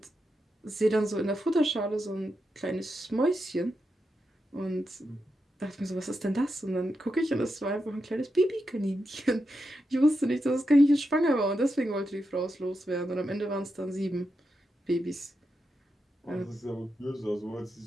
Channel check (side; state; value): both; normal; correlation 0.86